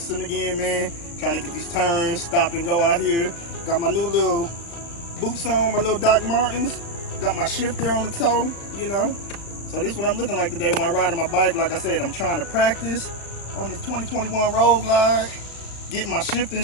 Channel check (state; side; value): late; right; 35 ms